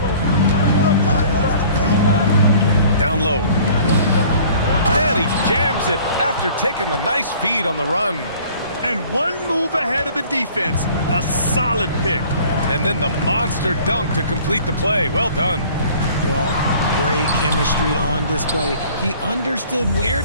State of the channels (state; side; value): inverted; both; correlation -0.51